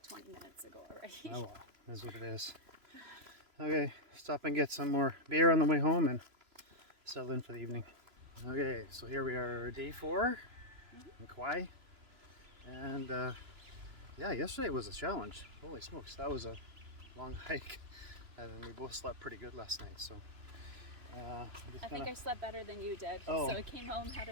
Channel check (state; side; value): late; left; 3.0 ms